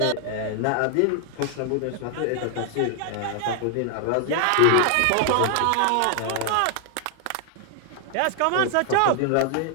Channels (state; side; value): different; both; correlation 0.00